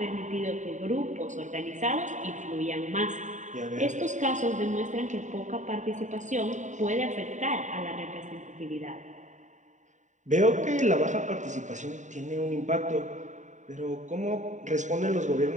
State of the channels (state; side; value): late; left; 0.35 ms